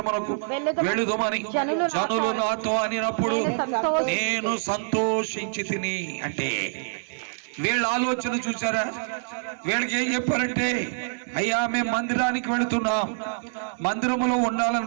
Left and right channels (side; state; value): left; silent; 58 dB below the other